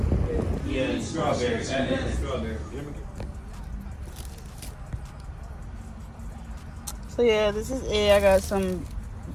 Yeah, strawberry. Strawberry. So yeah, this is it. I got some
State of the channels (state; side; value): identical; both; correlation 1.00